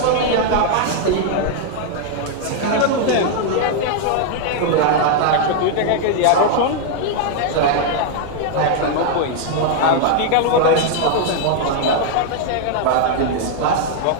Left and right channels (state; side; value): different; both; correlation 0.00